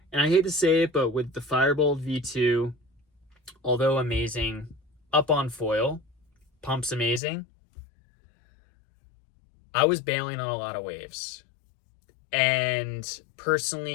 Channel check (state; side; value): drops out; right; at 7.2 s